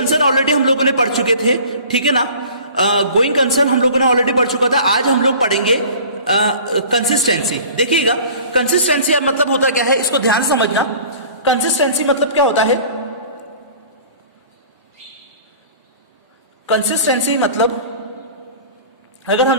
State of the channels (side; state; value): both; inverted; correlation -0.44